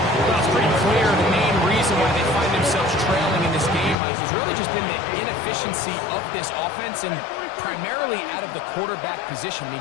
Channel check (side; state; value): right; drops out; at 4.0 s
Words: Well, it's pretty clear the main reason why they find themselves trailing in this game, Mike, has really just been the inefficiency of this offense and primarily out of the quarterback position. I